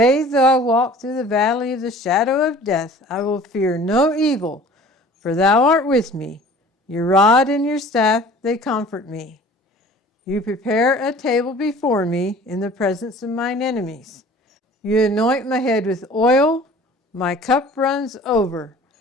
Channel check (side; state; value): both; normal; correlation 0.47